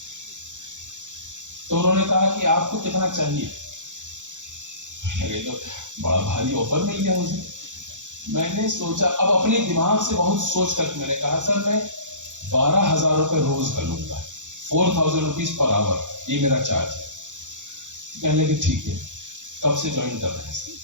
तो उन्होंने कहा कि आपको कितना चाहिए। तो बड़ा भारी ऑफर मिल गया मुझे। मैंने सोचा, अब अपने दिमाग से बहुत सोच कर मैंने कहा सर मैं 12,000 रुपए रोज कर लूंगा, 4,000 रुपीज पर आवर, ये मेरा चार्ज है। कहने लगे ठीक है, कब से ज्वाइन कर रहे हैं सर?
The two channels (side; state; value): left; late; 0.86 ms